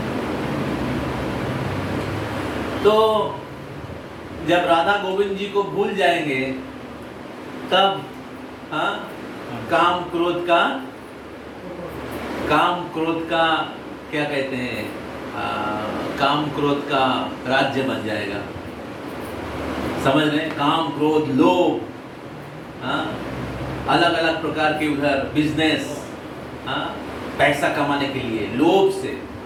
तो जब राधा गोविंद जी को भूल जाएंगे तब, हाँ, काम क्रोध का क्या कहते हैं, काम क्रोध का राज्य बन जाएगा। समझ रहे? काम क्रोध लोभ, हाँ, अलग अलग प्रकार के उधर बिजनेस, हाँ, पैसा कमाने के लिए लोभ से।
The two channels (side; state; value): both; identical; correlation 1.00